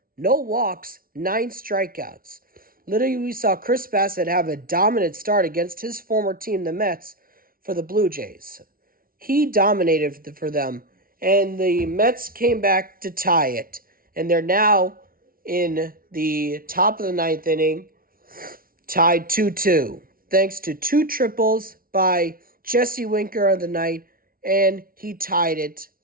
no walks, 9 strikeouts. Literally, we saw Chris Bassett have a dominant start against his former team, the Mets, for the Blue Jays. He dominated for them, and the Mets came back to tie it. And they're now in the top of the ninth inning, tied 2-2, thanks to 2 triples by Jesse Winker on the night, and he tied it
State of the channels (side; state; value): left; late; 0.43 ms